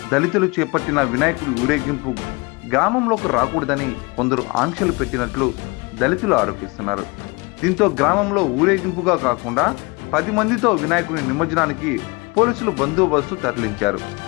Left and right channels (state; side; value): quieter; right; 27.0 dB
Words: దళితులు చేపట్టిన వినాయకుడి ఊరేగింపు గ్రామంలోకి రాకూడదని కొందరు ఆంక్షలు పెట్టినట్లు దళితులు ఆరోపిస్తున్నారు. దీంతో గ్రామంలో ఊరేగింపుగా కాకుండా 10 మందితో వినాయకుడి నిమజ్జనానికి పోలీసులు బందోబస్తు తరలించారు.